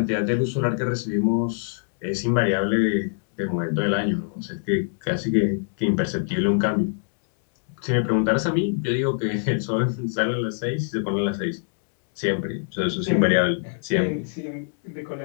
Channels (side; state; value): right; silent; digital silence